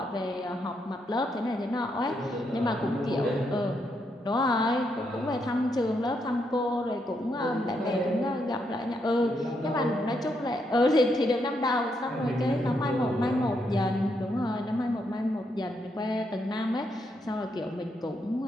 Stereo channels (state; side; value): normal; both; correlation 0.79